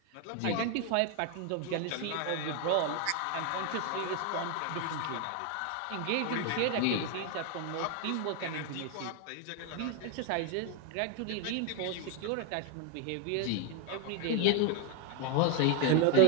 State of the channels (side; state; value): both; different; correlation 0.01